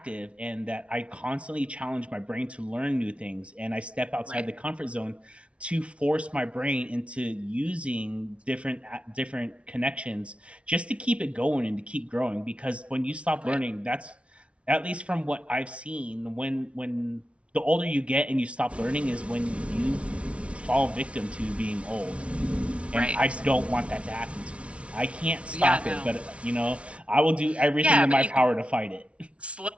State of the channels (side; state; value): left; late; 0.061 ms